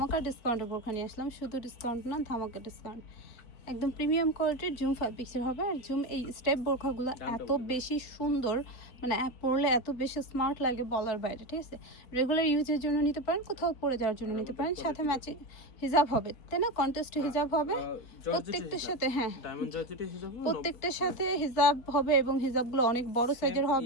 ডিসকাউন্টের বোরখা নিয়ে আসলাম। শুধু ডিসকাউন্ট না, ধামাকা ডিসকাউন্ট। একদম প্রিমিয়াম কোয়ালিটির জুম ফ্যাব্রিক্সের হবে। আর জুম এই স্টেপ বোরখাগুলো এত বেশি সুন্দর, মানে পরলে এত বেশি স্মার্ট লাগে বলার বাইরে। ঠিক আছে, রেগুলার ইউজের জন্য নিতে পারেন, কোথাও পরে যাওয়ার জন্য নিতে পারেন। সাথে ম্যাচিং হিজাব হবে, তাই না? কন্টেস্ট হিজাব হবে প্রত্যেকটার সাথে। হ্যাঁ, প্রত্যেকটার সাথে হিজাব হবে এবং হিজাবগুলো অনেক বড় সাইজের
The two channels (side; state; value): right; late; 4.1 ms